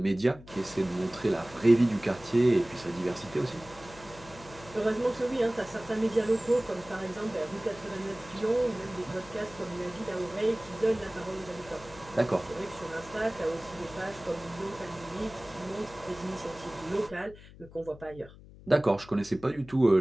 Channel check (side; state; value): left; noise; hum, 19 dB below the sound